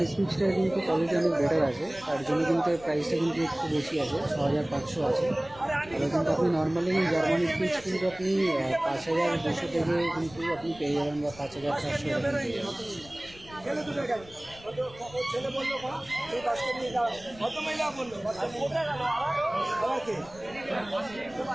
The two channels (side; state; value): left; noise; rumble, 21 dB below the sound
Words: স্পিচটা কিন্তু কোয়ালিটি অনেক বেটার আছে, তার জন্য কিন্তু প্রাইসটা কিন্তু একটু বেশি আছে, 6500 আছে। তাহলে কিন্তু আপনি নর্মালি জার্মান স্পিচ কিন্তু আপনি 5200 থেকে কিন্তু আপনি পেয়ে যাবেন, বা 5400 পেয়ে যাবেন।